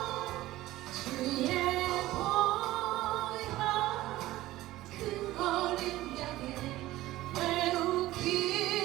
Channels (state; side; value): quieter; left; 16.6 dB